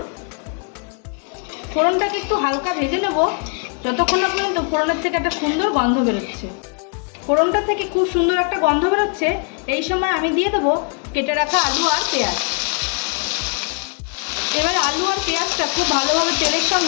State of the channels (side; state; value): right; quieter; 38.5 dB